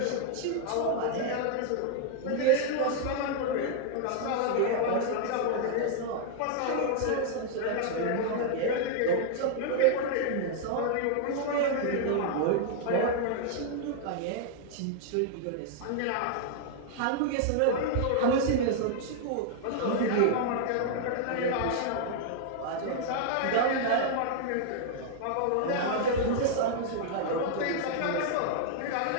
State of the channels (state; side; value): different; both; correlation -0.01